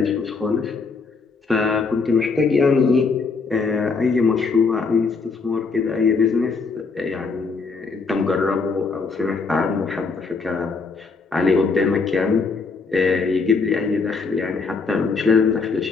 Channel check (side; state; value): right; quieter; 4.5 dB